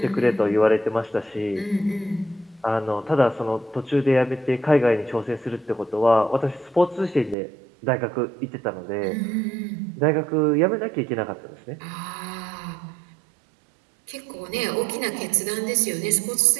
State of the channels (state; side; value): drops out; left; at 7.4 s